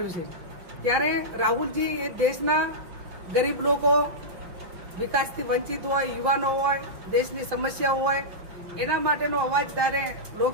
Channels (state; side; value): late; left; 5.7 ms